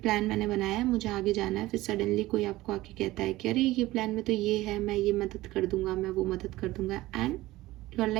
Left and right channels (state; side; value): quieter; left; 17.7 dB